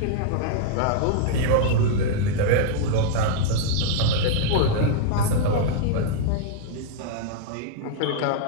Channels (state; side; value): different; both; correlation -0.01